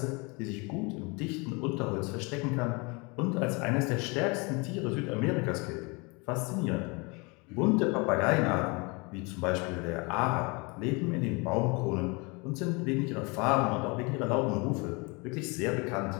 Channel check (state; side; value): quieter; right; 28.9 dB